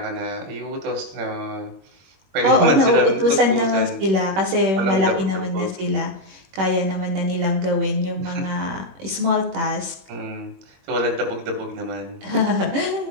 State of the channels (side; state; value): left; late; 21 ms